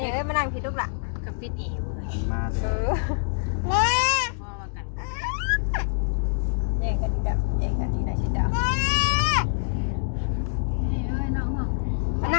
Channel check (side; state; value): right; silent; digital silence